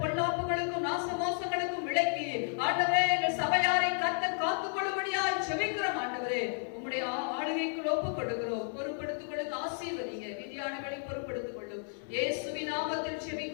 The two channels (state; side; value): silent; right; 56 dB below the other